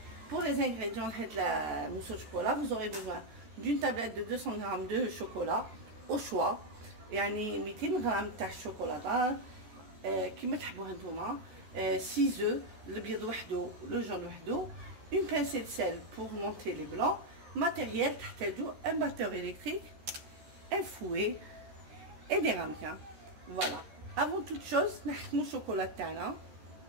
Pour les ingrédients de la mousse au chocolat, vous aurez besoin d'une tablette de 200 g de chocolat au choix. يعني 200 g تاع الشوكولاته كيما تحبوها نتوما. 6 œufs, البيض وحده le jaune وحده. Une pincée de sel pour monter les blancs. Matériel, un batteur électrique, un fouet et des ramequins. Voilà. Avant toute chose, نحكموا الشوكولا تاعنا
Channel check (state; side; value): late; left; 13 ms